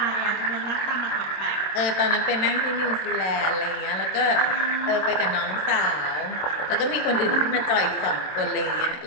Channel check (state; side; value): late; right; 27 ms